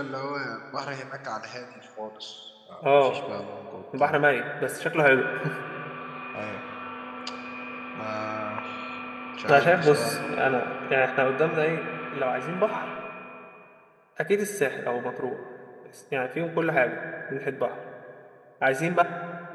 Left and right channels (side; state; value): both; identical; correlation 1.00